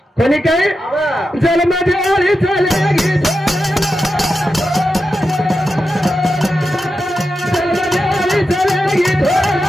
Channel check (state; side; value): normal; both; correlation 0.89